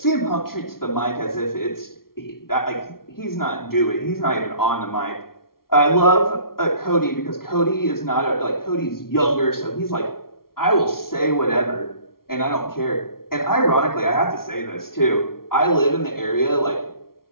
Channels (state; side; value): late; right; 0.93 ms